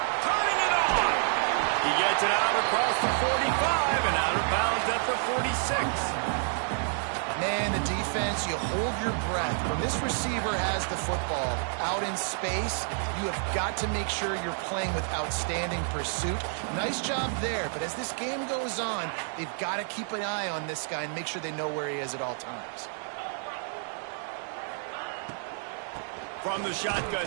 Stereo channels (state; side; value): silent; left; 58 dB below the other